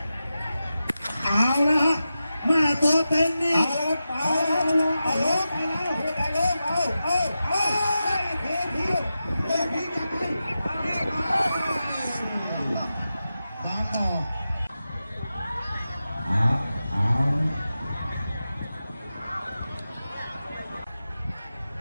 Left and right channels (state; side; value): inverted; both; correlation -0.92